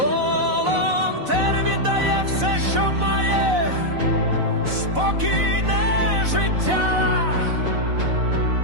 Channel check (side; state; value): left; late; 4.0 ms